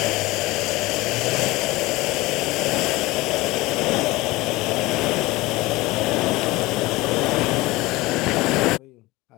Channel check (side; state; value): right; quieter; 20.5 dB